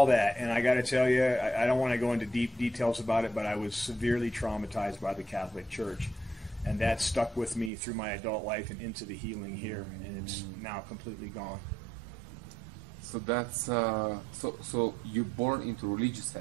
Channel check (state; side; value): drops out; left; at 7.7 s